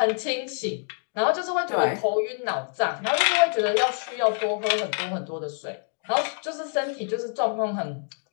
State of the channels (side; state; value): right; silent; 61 dB below the other